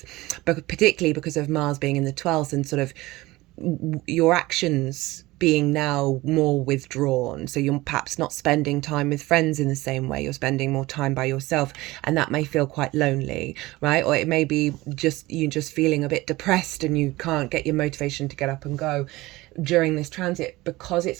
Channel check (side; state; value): left; quieter; 19.7 dB